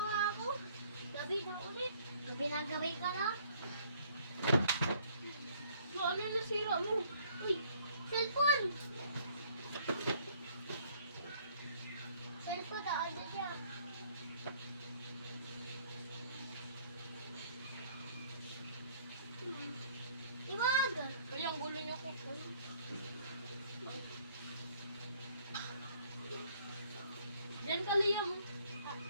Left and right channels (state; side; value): inverted; both; correlation -0.60